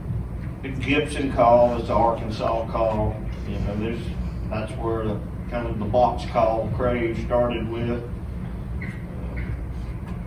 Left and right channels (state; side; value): identical; both; correlation 1.00